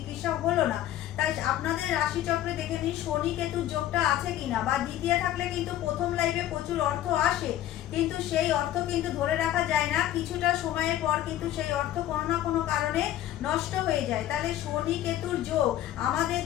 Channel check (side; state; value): right; quieter; 12.8 dB